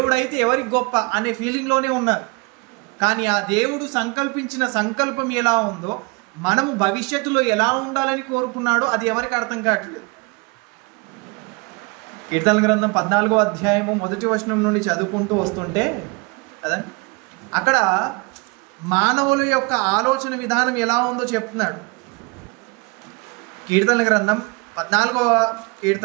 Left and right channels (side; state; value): left; quieter; 28.9 dB